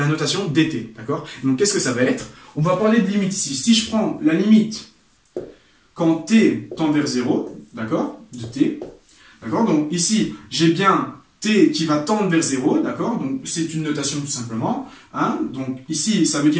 notation dt, d'accord? Donc qu'est-ce que ça va être? On va parler de limite ici. Si je prends la limite quand t tend vers 0, d'accord? De t, d'accord? Donc ici, j'ai bien t qui va tendre vers 0, d'accord? Donc c'est une notation tout simplement, hein? Donc ici, ça veut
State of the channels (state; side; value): identical; both; correlation 1.00